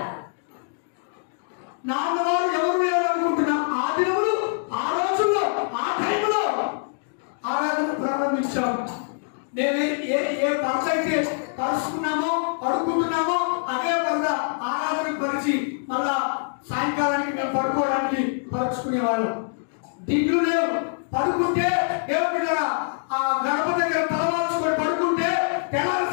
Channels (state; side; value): silent; right; digital silence